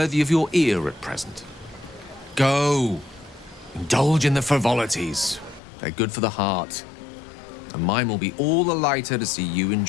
of your ear at present. Go, indulge in the frivolities. They're good for the heart. And mine will be all the lighter to see you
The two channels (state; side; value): drops out; right; at 5.6 s